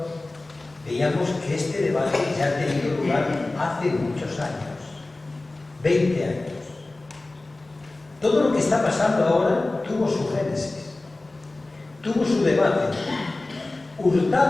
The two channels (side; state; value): right; quieter; 3.0 dB